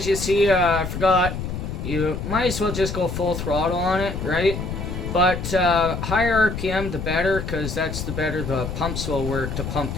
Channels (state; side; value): noise; left; rumble, 5 dB below the sound